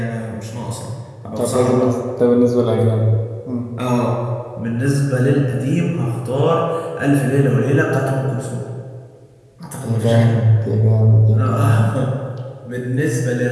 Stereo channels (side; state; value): both; identical; correlation 1.00